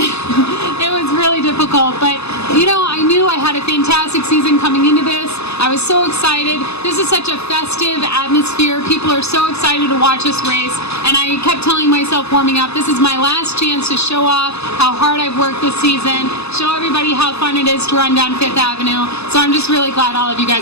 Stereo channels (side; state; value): right; late; 0.79 ms